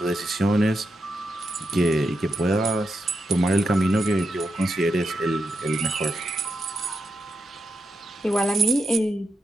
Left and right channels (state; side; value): normal; both; correlation 0.86